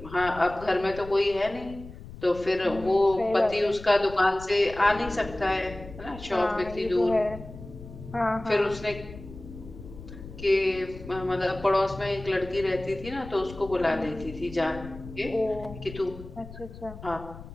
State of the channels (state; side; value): noise; left; rumble, 15 dB below the sound